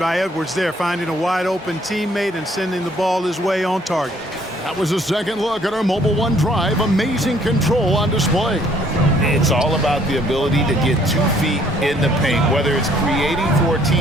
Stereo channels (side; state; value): both; normal; correlation 0.62